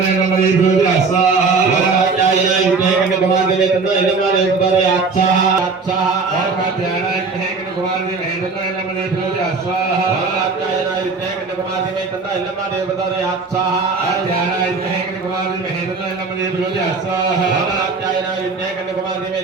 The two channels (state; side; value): quieter; left; 4.4 dB